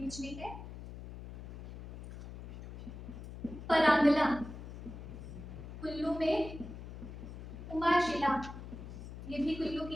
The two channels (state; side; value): noise; left; hum, 11 dB below the sound